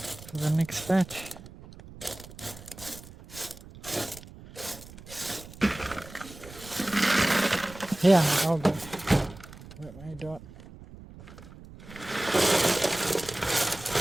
the next batch? Here, I'll go. Let me do it.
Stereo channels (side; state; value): right; noise; rumble, 17 dB below the sound